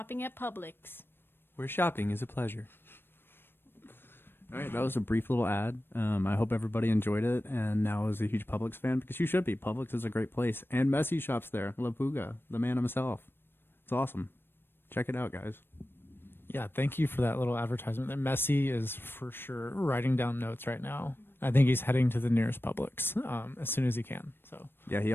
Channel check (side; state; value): right; late; 0.10 ms